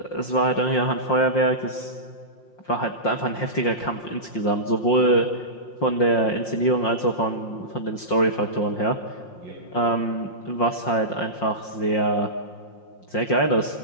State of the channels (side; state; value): right; late; 5.6 ms